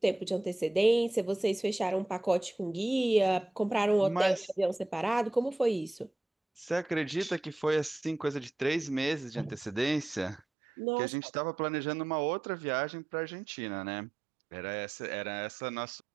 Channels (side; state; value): left; drops out; at 10.4 s